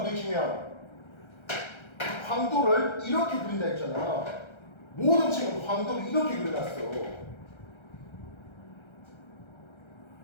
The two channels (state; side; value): late; right; 1.3 ms